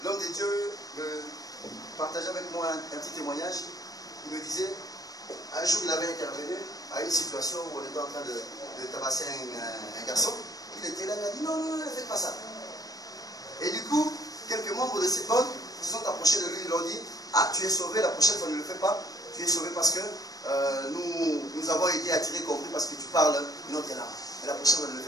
L'homme de Dieu me partageait avec moi un petit témoignage. Il me disait, un jour il avait intervenu à une situation où on était en train de tabasser un garçon. Il était là, il a dit non, non, ne faites pas ça. Et du coup, quelques membres de cette bande se sont approchés de lui, ils lui ont dit, ah, tu es sauvé, la prochaine fois ne le fais pas, Tu es sauvé parce que nous avons été attirés, compris, parce que tu parles une autre langue. Mais la prochaine, on ne le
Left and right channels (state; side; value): late; right; 0.18 ms